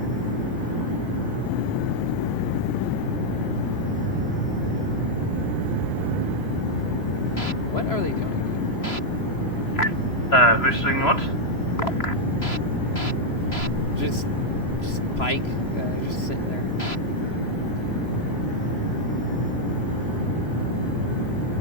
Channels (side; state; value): right; late; 3.0 ms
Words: What are they doing? Who's doing what? Just Pike, just sitting there.